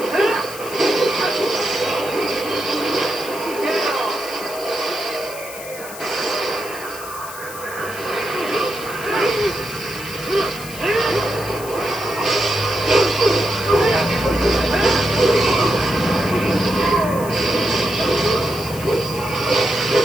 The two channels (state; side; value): noise; left; hiss, 13 dB below the sound